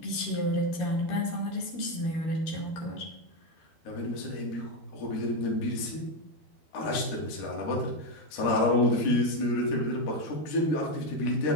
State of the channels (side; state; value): right; late; 13 ms